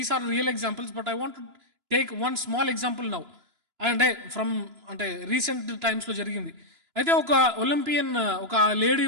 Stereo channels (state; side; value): late; left; 2.9 ms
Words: are real examples, but I want to take one small example now. అంటే recent టైమ్స్లో జరిగింది. అయితే ఒక ఒలింపియన్, ఒక లేడీ